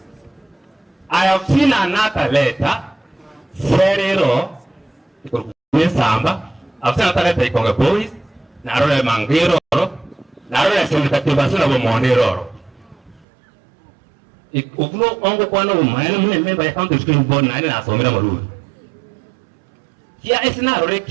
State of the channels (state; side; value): drops out; left; at 13.2 s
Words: I have seen another letter. Serero, Samba, I've seen another letter from the boys, Narrow Mangiro, Narrow Senator Monero. If no only one of my member account to screen board 9 as on Maru. Here is now